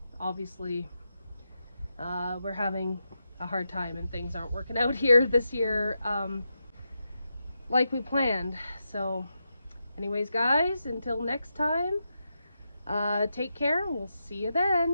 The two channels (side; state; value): both; inverted; correlation -0.87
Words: obviously we're having a hard time and things aren't working out here this year like we planned. So anyways, guys, until next time, take care. We'll see you